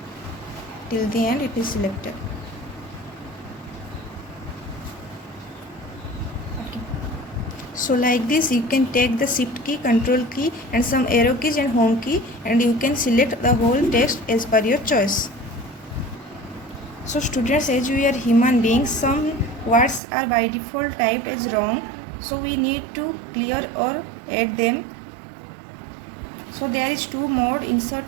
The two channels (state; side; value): drops out; left; at 20.0 s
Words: Till the end it is selected. Okay. So like this, you can take the Shift key, Control key and some arrow keys and Home key, and you can select the whole text as per your choice. So students, as we are human beings, some words are by default typed as wrong, so we need to clear or add them. So there is two mode,